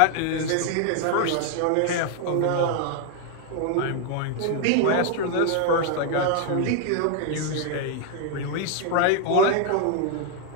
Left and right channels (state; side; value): different; both; correlation 0.00